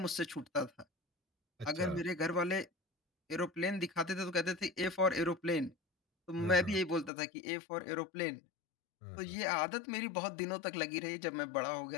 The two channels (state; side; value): drops out; right; at 7.1 s